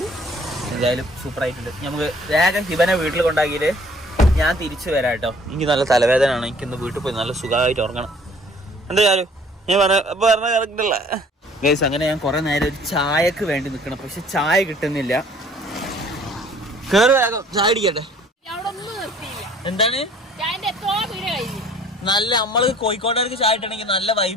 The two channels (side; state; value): both; normal; correlation 0.55